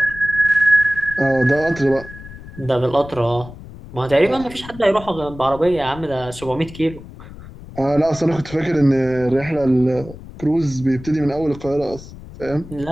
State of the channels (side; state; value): left; noise; rumble, 16 dB below the sound